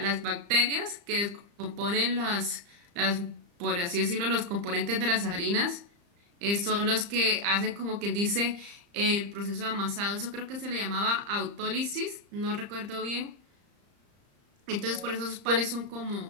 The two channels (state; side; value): late; left; 35 ms